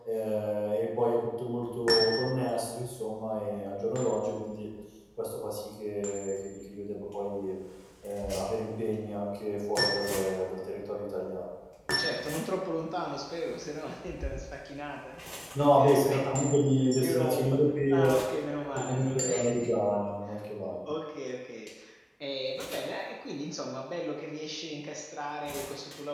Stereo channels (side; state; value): both; identical; correlation 1.00